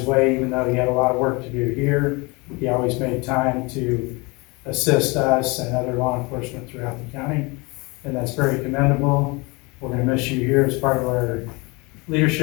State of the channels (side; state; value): right; quieter; 26.8 dB